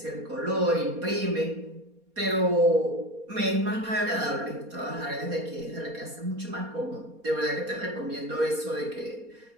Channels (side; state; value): left; late; 4.2 ms